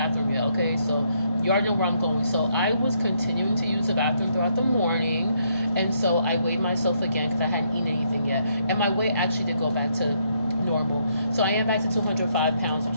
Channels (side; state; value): both; inverted; correlation -0.73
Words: yet. Okay, so you already know where I'm going. So I was continuing to use the bathroom throughout the morning, and so I weighed myself again because I hadn't eaten anything yet, and my weight actually did go back to normal. So I am back to 205 pounds, which